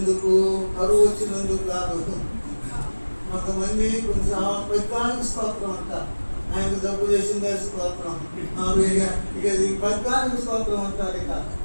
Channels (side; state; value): both; inverted; correlation -1.00